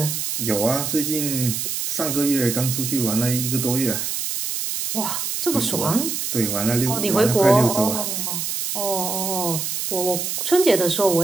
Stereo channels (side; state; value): right; noise; hiss, 3 dB below the sound